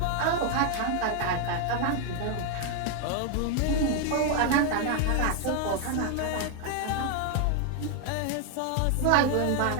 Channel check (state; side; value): different; both; correlation 0.01